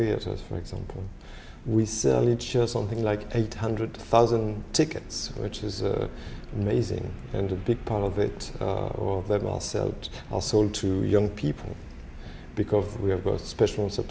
for example. We sell each year something like 800,000 tickets, which is amazing. And a big part of it, or them are sold to young people, because we have got special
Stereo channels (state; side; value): identical; both; correlation 1.00